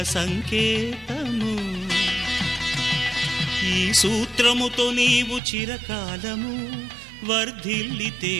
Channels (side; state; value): left; drops out; at 5.4 s